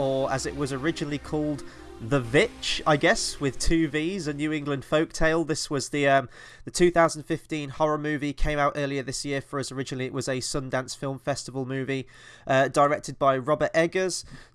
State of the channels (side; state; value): both; identical; correlation 1.00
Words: as it was originally called, The Vitch, I guess, with two V's, a New England folktale. This was the 2015 horror movie, came out earlier this year for us. Originally it was a Sundance Film Festival movie, directed by Robert Eggers,